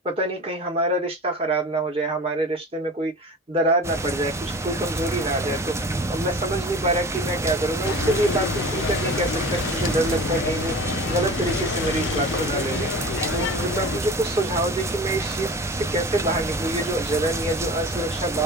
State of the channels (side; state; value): both; normal; correlation 0.37